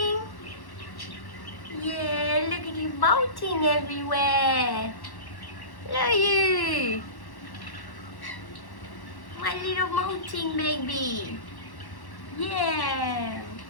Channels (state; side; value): late; right; 1.1 ms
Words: Yeah, look at you molting everywhere. Look at you. My little molting baby. Yeah.